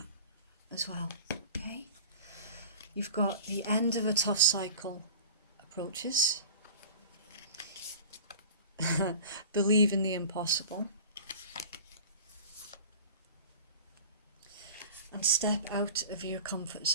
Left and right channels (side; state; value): both; inverted; correlation -0.37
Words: as well, okay? You've got the end of a tough cycle approaches. Believe in the impossible. And step out of your comfort